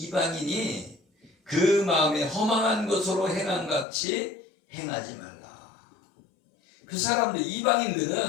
그 마음에 허망한 것으로 행한 같이 행하지 말라. 그 사람들,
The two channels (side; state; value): right; drops out; at 3.9 s